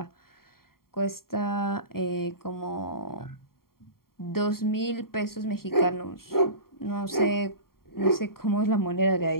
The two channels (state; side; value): late; right; 0.93 ms